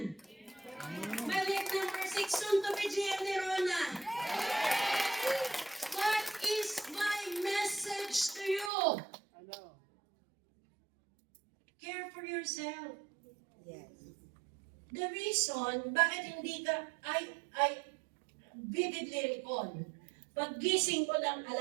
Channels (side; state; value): left; drops out; at 8.7 s